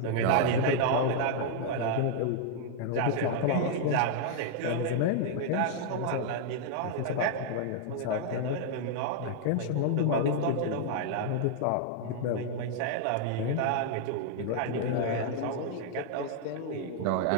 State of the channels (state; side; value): different; both; correlation -0.01